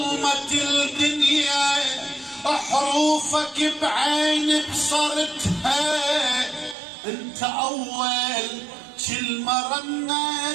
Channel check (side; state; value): left; drops out; at 6.8 s